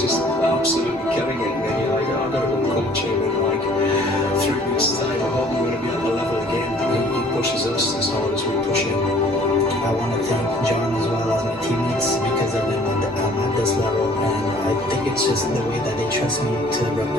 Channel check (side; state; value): both; normal; correlation 0.54